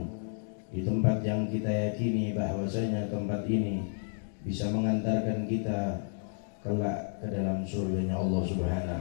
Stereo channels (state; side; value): silent; right; digital silence